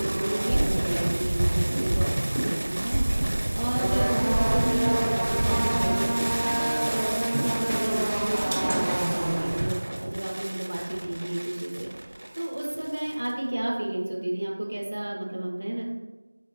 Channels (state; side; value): inverted; both; correlation -1.00